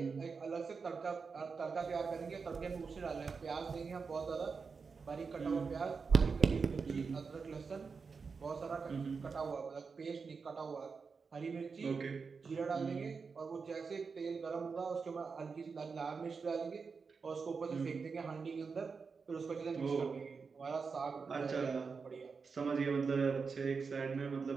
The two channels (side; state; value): left; quieter; 5.1 dB